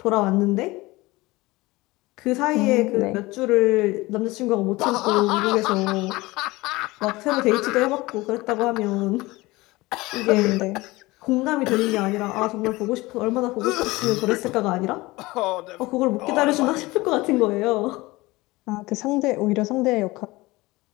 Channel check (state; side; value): quieter; right; 20.9 dB